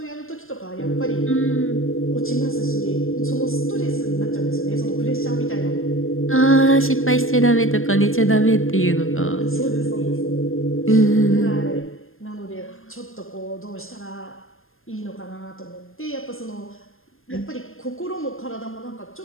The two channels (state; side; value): late; right; 0.60 ms